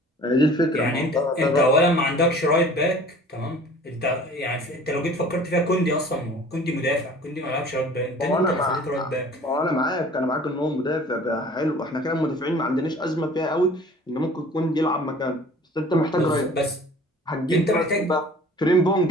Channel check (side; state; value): both; normal; correlation 0.47